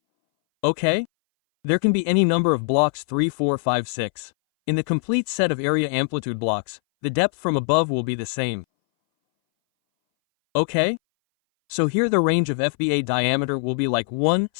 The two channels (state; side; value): silent; right; 61 dB below the other